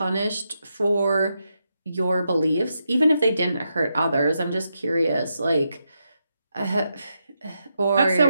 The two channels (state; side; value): inverted; both; correlation -0.84